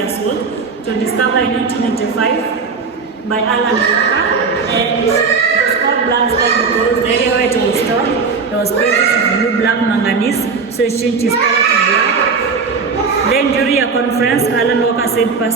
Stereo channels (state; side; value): quieter; left; 5.0 dB